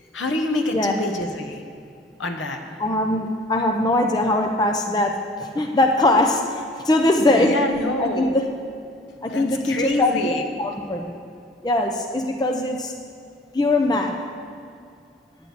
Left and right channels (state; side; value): normal; both; correlation 0.48